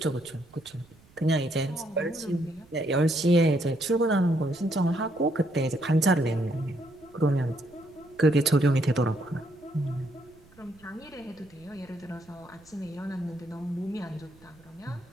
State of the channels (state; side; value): noise; right; rumble, 27 dB below the sound